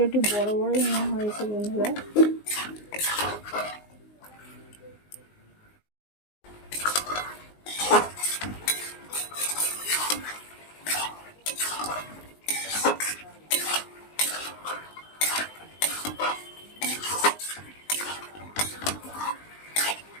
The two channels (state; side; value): late; right; 19 ms